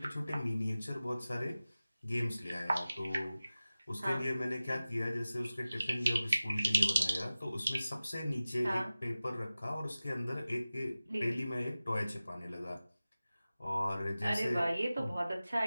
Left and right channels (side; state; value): both; inverted; correlation -0.96